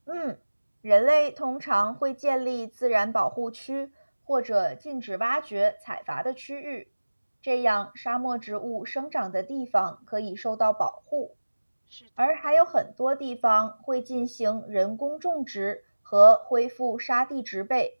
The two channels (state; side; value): inverted; both; correlation -1.00